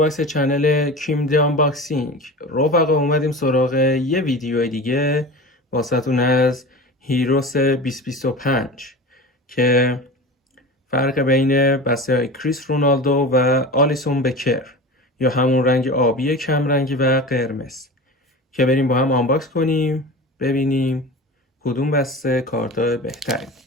چنل کیم دی آنباکسینگ. رفقا اومدیم سراغ یه ویدیو دیگه واسهتون از هیروس 2025 که فرق بین بسته های کریس رونالدو و آلیسون بکر یا همون رنگ آبی کم رنگی و قرمز که بریم با هم آنباکس کنیم ببینیم کدوم بسته کارت بهتری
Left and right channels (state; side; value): normal; both; correlation 0.31